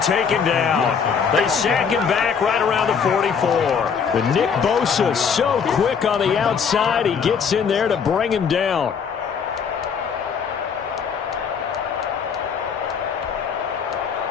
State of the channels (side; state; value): right; quieter; 6.5 dB